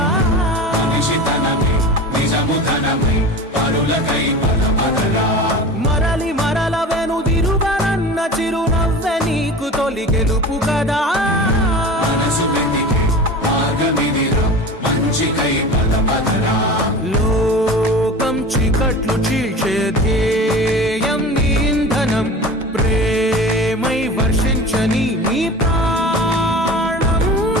మనిషితనమే నిజముధనమై పరులకై పదపదరా మరలి మరల వెనుదిరుగనన్న చిరునవ్వె నీకు తొలి గెలుపు కదా మనసు వెతికే మార్గమిదిరా మంచికై పదపదరా లోకం చీకట్లు చీల్చే ధ్యేయం నీ ఇంధనం ప్రేమై వర్షించని నీ ప్రాణం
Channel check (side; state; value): both; normal; correlation 0.35